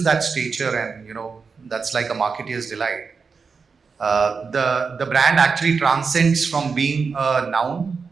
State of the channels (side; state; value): left; quieter; 5.2 dB